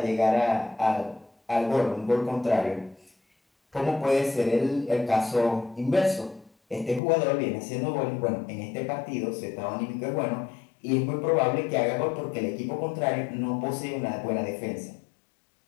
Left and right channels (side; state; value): right; drops out; at 7.0 s